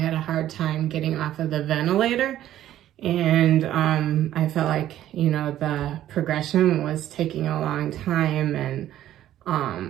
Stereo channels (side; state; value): left; quieter; 12.6 dB